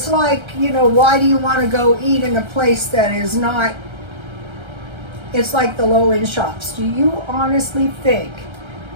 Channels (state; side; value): late; left; 1.3 ms